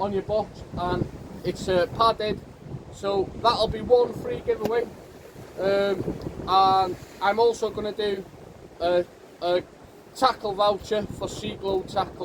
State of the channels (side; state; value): both; identical; correlation 1.00